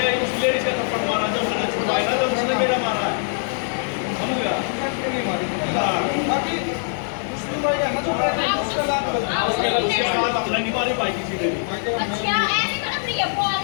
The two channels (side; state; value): right; silent; digital silence